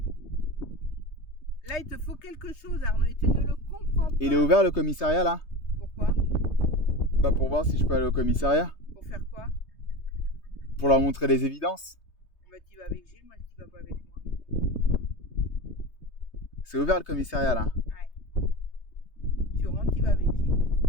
Là, il te faut quelque chose, Arnaud, et tu ne le comprends pas. Il est ouvert, le commissariat, là? Pourquoi? Bah, pour voir si je peux aller au commissariat. Pour faire quoi? Pour leur montrer les évidences. Bah, tu vas avec Gilles, moi, tu vas pas avec moi. C'est ouvert, le commissariat, là? Ouais. Tu rentres, tu vas avec Gilles.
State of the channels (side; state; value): right; late; 3.2 ms